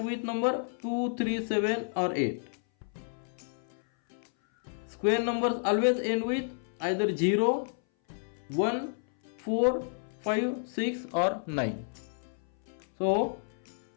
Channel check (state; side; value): silent; right; 57 dB below the other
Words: with number 2, 3, 7 or 8. Square numbers always end with either 0, 1, 4, 5, 6 or 9. So